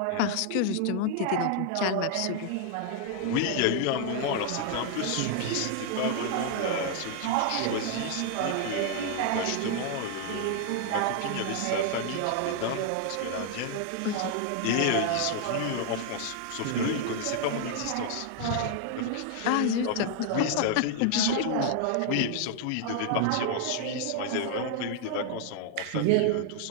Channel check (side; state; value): both; different; correlation 0.00